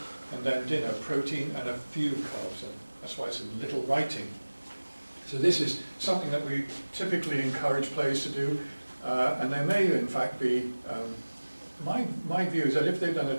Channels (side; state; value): both; inverted; correlation -1.00